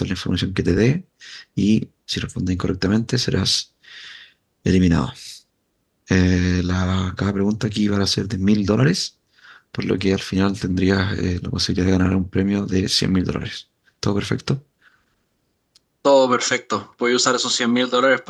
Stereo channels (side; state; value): both; identical; correlation 1.00